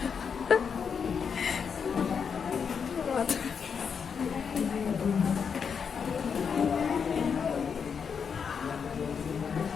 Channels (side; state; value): right; quieter; 6.5 dB